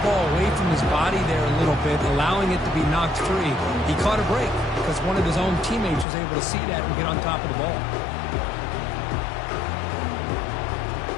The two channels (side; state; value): right; drops out; at 6.1 s